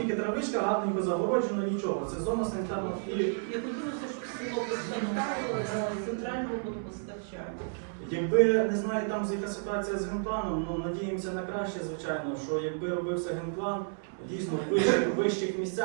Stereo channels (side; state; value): left; silent; 57 dB below the other